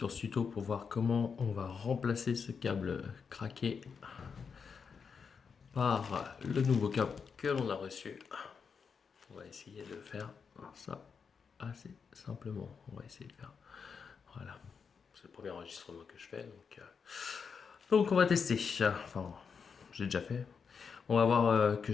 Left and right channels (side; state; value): right; quieter; 6.0 dB